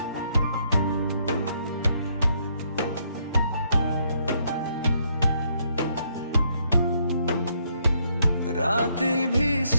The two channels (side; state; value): both; inverted; correlation -0.72